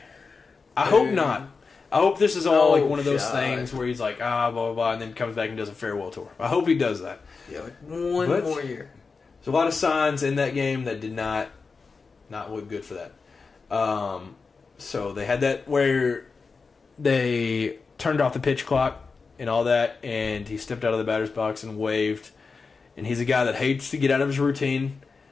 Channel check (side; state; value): right; quieter; 4.6 dB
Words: I hope not. I hope this is all like one of those things where he's like, blah, blah, blah, and then comes back and does a farewell tour. I hope he does that. Yeah, like one more year. There's a lot of signs in that game that did not look good for that. So they had that where they turned off the pitch clock and all that, and he stepped out of the batter's box and waved. And he's a guy that hates to get out of his routine,